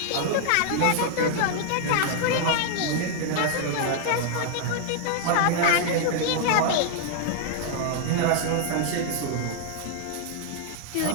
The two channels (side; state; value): both; different; correlation -0.01